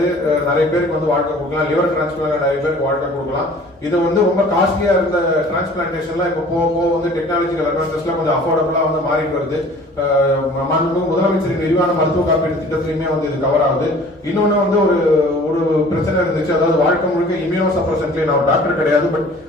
நிறைய பேருக்கு வந்து வாழ்க்கை கொடுக்கலாம். லிவர் டிரான்ஸ்பிளான்ட் நிறைய பேருக்கு வாழ்க்கை கொடுக்கலாம். இது வந்து ரொம்ப காஸ்ட்லியா இருந்த டிரான்ஸ்பிளான்டேஷன்லாம் இப்போ போக வந்து டெக்னாலஜிக்கல் அட்வான்சஸ்லாம் கொஞ்சம் அஃபோர்டபுளா வந்து மாறிட்டு வருது. முதலமைச்சரின் விரிவான மருத்துவ காப்பீடு திட்டத்திலுமே வந்து இது கவர் ஆகுது. இன்னொன்னு வந்து ஒரு பிரச்சனை இருந்துச்சு, அதாவது வாழ்க்கை முழுக்க இம்யூனோ சப்ரசன்ட்லேயே, நான் டாக்டர் கிடையாது பட்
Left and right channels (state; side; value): normal; both; correlation 0.49